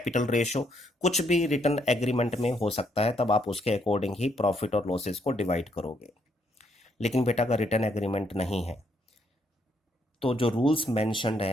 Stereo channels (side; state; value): both; normal; correlation 0.73